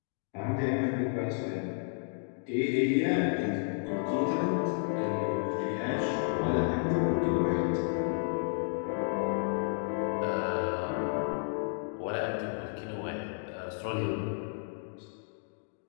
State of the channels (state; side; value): silent; right; digital silence